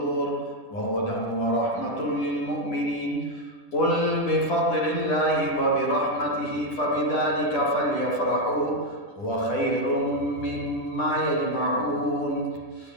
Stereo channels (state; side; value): late; right; 10 ms